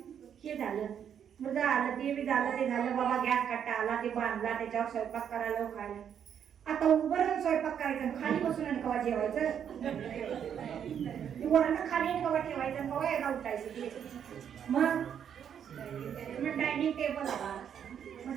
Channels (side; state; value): left; quieter; 8.5 dB